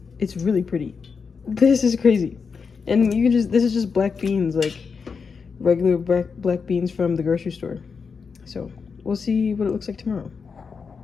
it's really pretty. This is crazy. And you can just, this is just black beans, like regular black beans from the grocery store. So we'll see what it looks like tomorrow.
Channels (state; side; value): quieter; right; 5.5 dB